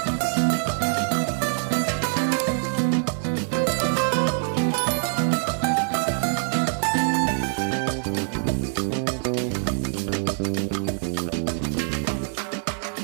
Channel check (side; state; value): left; silent; digital silence